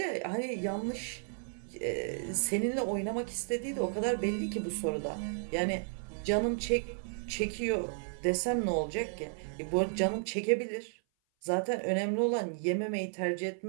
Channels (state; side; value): silent; left; 56 dB below the other